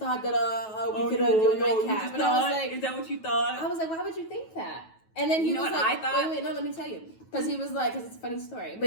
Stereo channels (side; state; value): right; late; 9.2 ms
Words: that we could do a nightcap." And I was like, "Is that what you thought?" I was like, "Why would you think that?" And then he was like, I thought? Wait, no, let me tell you, because he was like, because it's a funny story,